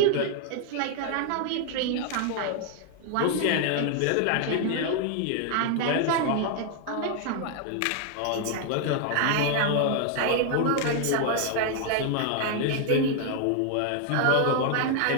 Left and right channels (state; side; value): different; both; correlation 0.00